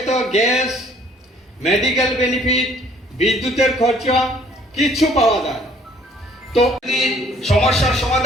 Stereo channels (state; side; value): normal; both; correlation 0.59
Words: গ্যাস, মেডিকেল বেনিফিট, বিদ্যুতের খরচা, কিছু পাওয়া যায়। তো সমস্যার